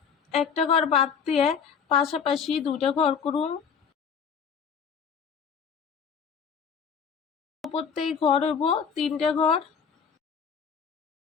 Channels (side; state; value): right; quieter; 6.8 dB